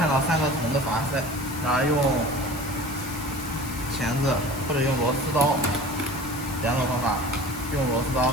到3个铜的阀塞，然后用钳子或者用螺丝刀，2种方法，用螺丝刀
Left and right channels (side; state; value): left; noise; hiss, 13 dB below the sound